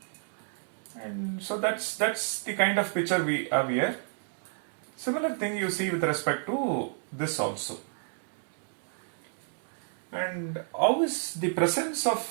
And so that's the kind of picture we have here. Similar thing you see with respect to this also. And how is the presence of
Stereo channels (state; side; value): silent; left; 57 dB below the other